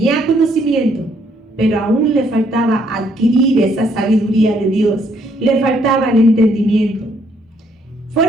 conocimiento, pero aún le faltaba adquirir esa sabiduría de Dios. Le faltaba el entendimiento.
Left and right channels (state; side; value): normal; both; correlation 0.69